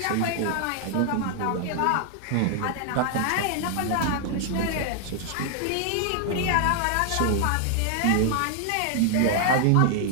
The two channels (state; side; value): different; both; correlation 0.00